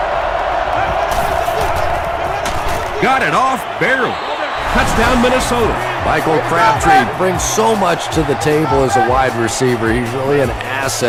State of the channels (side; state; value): both; identical; correlation 1.00